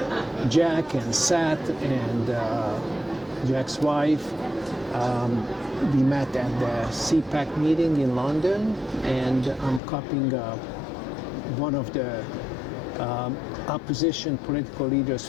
Jack and Sat and Jack's wife. We met at the CPAC meeting in London, and I'm copying one of the opposition political leaders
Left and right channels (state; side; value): drops out; right; at 9.8 s